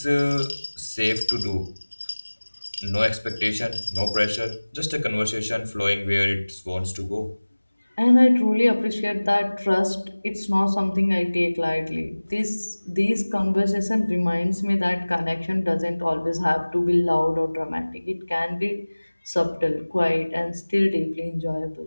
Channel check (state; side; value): inverted; both; correlation -1.00